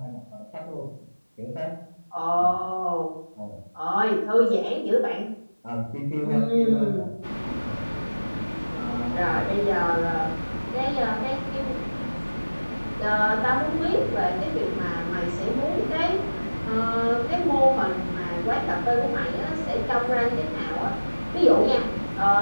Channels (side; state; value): both; inverted; correlation -1.00